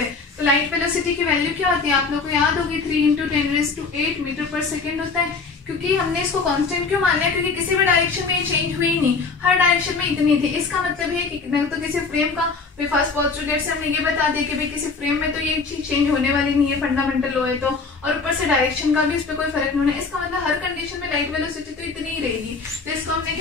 तो लाइट वेलोसिटी की वैल्यू क्या होती है, आप लोगों को याद होगी, 3 × 10⁸ मीटर पर सेकेंड होता है। क्योंकि हमने इसको कांस्टेंट क्यों मान लिया, क्योंकि किसी भी डायरेक्शन में चेंज हुई नहीं, हर डायरेक्शन में इतनी थी। इसका मतलब है कि तो किसी फ्रेम का फर्स्ट पोस्टुलेट से हमने ये बता दिया कि भाई किसी फ्रेम में तो ये चीज चेंज होने वाली नहीं है, फंडामेंटल लॉ है तो, और ऊपर से डायरेक्शन का भी इस पर कोई फर्क नहीं होना। इसका मतलब हर कंडीशन में लाइट वेलोसिटी तो इतनी ही रहेगी। तो इसको हमने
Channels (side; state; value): right; quieter; 4.5 dB